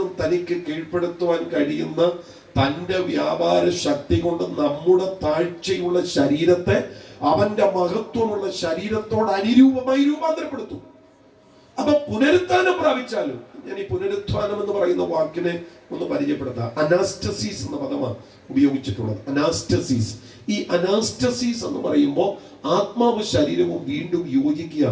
തനിക്ക് കീഴ്പ്പെടുത്തുവാൻ കഴിയുന്ന തന്റെ വ്യാപാര ശക്തി കൊണ്ട് നമ്മുടെ താഴ്ചയുള്ള ശരീരത്തെ അവന്റെ മഹത്വമുള്ള ശരീരത്തോട് അനുരൂപമായി രൂപാന്തരപ്പെടുത്തും. അപ്പൊ പുനരുത്ഥാനം പ്രാപിച്ചാലും, ഞാൻ ഈ പുനരുത്ഥാനം എന്ന് പറയുന്ന വാക്കിനെ ഒന്ന് പരിചയപ്പെടുത്താം. അനാസ്റ്റസീസ് എന്ന പദമാണ് ഉപയോഗിച്ചിട്ടുള്ളത്. അനാസ്റ്റസീസ്. ഈ അനാസ്റ്റസീസ് എന്ന് പറയുമ്പോൾ ആത്മാവ് ശരീരവും വീണ്ടും യോജിക്കുക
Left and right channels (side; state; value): both; identical; correlation 1.00